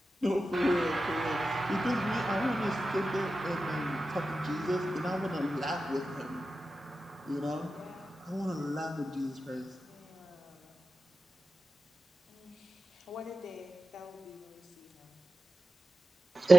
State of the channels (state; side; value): normal; both; correlation 0.93